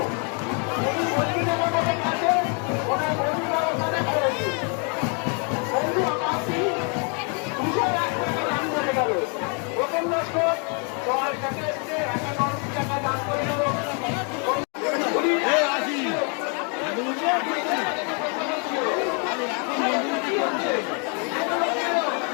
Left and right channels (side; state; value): right; quieter; 37.6 dB